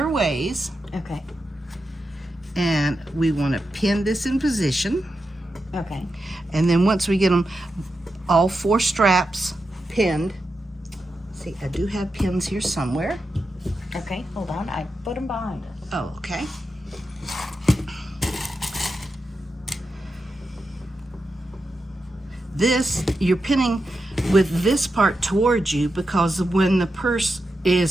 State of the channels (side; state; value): both; normal; correlation 0.88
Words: ways, Okay. and we want to pin this in position. Okay. And then once we get them all 4 straps pinned, see, I do have pins here somewhere. Okay. Hold on. I put them behind us. Oh, okay. This, you're pinning with this part towards you because when the purse